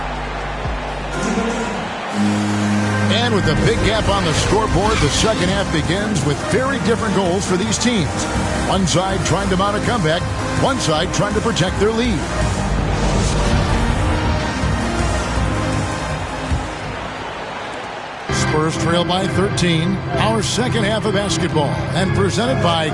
And with a big gap on the scoreboard, the second half begins with very different goals for these teams. One side trying to mount a comeback, one side trying to protect their lead. Spurs trail by 13. Our second half of basketball, and presented by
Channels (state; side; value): identical; both; correlation 1.00